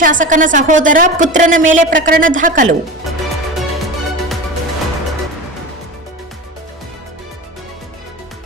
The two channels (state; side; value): normal; both; correlation 0.28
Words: ಶಾಸಕನ ಸಹೋದರ ಪುತ್ರನ ಮೇಲೆ ಪ್ರಕರಣ ದಾಖಲು.